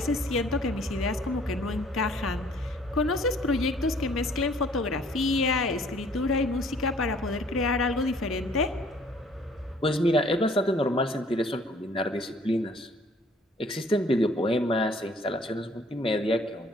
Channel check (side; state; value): both; normal; correlation 0.57